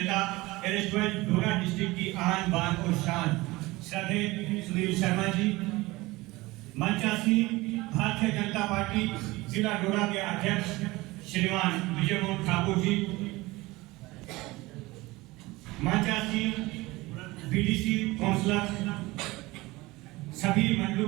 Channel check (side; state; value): left; quieter; 20.8 dB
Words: डोडा डिस्ट्रिक्ट की आन बान और शान श्रद्धेय सुनील शर्मा जी, मंचासीन भारतीय जनता पार्टी जिला डोडा के अध्यक्ष श्रीमान विजय मोहन ठाकुर जी, मंचासीन बीडीसी काउंसलर, सभी मंडलों